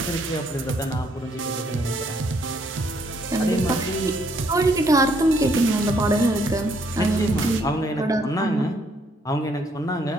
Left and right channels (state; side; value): normal; both; correlation 0.69